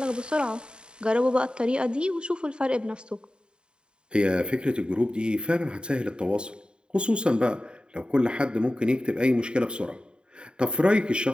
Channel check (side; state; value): left; late; 0.050 ms